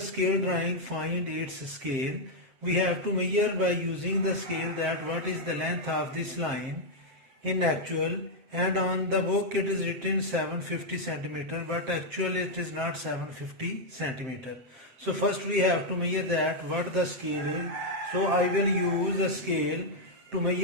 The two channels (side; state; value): left; late; 7.6 ms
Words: drawing find its scale. We have to measure by using the scale that what is the length of this line in actual, and on the book it is written 750 centimeter, but actually it is not 750 centimeter. So first we have to measure that what the scale is. So I will use a scale to